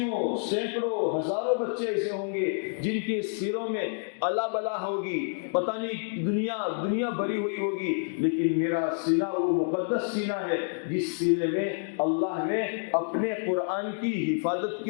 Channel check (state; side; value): silent; right; digital silence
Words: سینکڑوں، ہزاروں بچے ایسے ہوں گے جن کے سروں میں الا بلا ہوگی، پتہ نہیں دنیا بھری ہوئی ہوگی، لیکن میرا سینہ وہ مقدس سینہ ہے جس سینے میں اللہ نے اپنے قرآن کی حفاظت